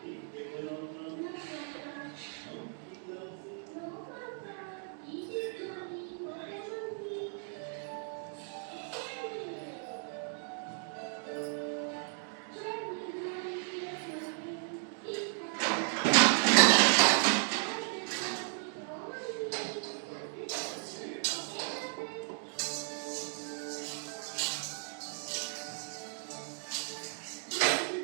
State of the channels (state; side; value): silent; left; 54 dB below the other